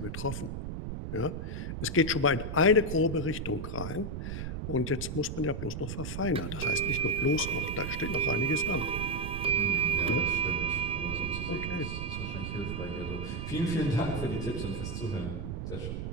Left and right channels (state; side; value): noise; right; rumble, 5 dB below the sound